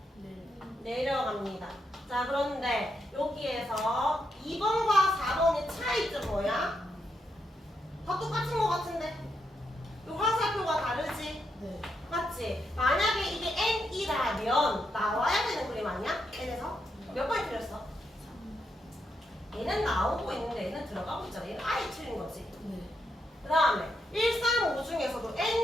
내려갑니다. 자, 그런데 여기에서 2번과 4번의 차이점 뭐야? 다 똑같은 것 같은데? 이 화살표가 다르지? 네. 맞지? 만약에 이게 N이라면 나와야 되는 그림 아니야? N에서? 몇 번이 틀렸어? 얘는 나오고 있는데 얘는 들어가고 있잖아. 얘는 아예 틀린 거지. 네. 그 다음에 1, 3, 5 중에서도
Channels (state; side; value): normal; both; correlation 0.81